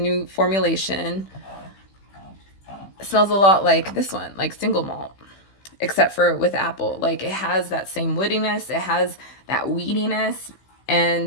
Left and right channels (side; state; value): right; late; 15 ms